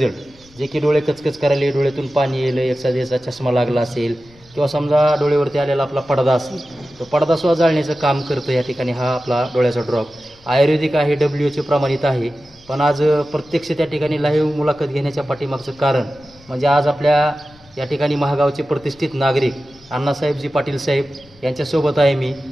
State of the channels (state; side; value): noise; left; rumble, 27 dB below the sound